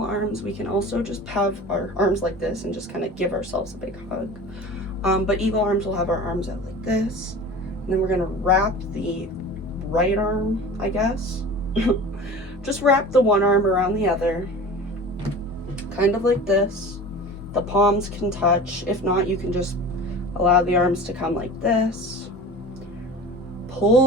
arms. We can also just have our arms like this and just kind of give ourselves a big hug. But eagle arms will have our arms out like this. And then we're going to wrap the right arm, I guess. Just wrap the one arm around the other. Kind of like this. The palms can touch. If not, you can just allow the arms to come like this.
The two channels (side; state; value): both; normal; correlation 0.37